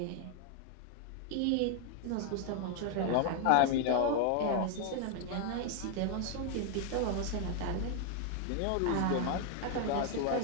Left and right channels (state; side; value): different; both; correlation 0.00